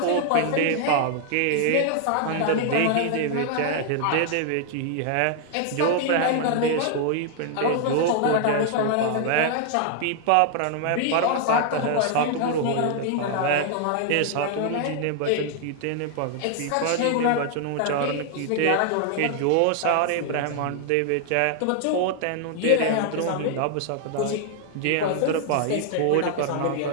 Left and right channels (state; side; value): different; both; correlation 0.00